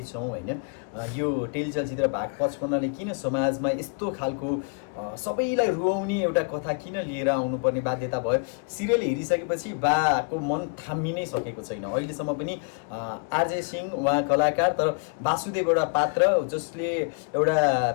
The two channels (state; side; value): quieter; right; 39.9 dB